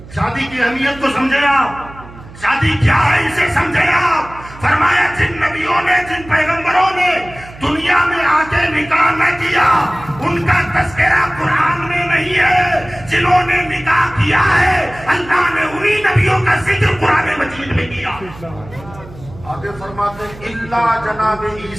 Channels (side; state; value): right; noise; hum, 18 dB below the sound